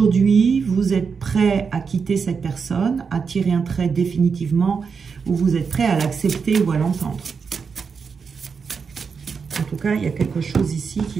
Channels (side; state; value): left; quieter; 5.6 dB